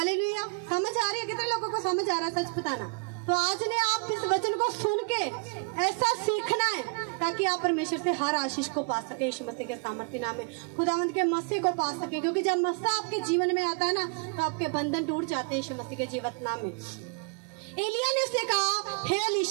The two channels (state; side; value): quieter; left; 33.6 dB